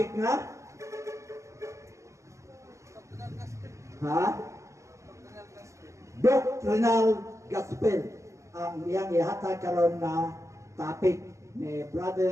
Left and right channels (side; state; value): left; late; 0.15 ms